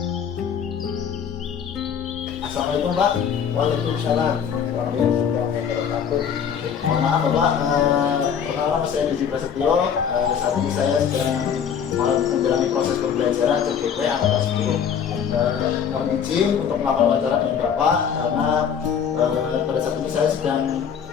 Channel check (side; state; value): right; quieter; 7.7 dB